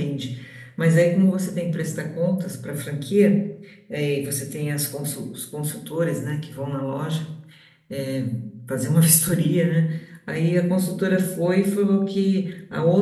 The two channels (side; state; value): both; identical; correlation 1.00